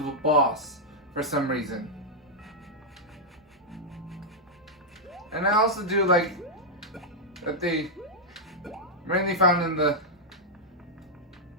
a boss for some reason. And I also do like that they mainly found in the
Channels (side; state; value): both; normal; correlation -0.05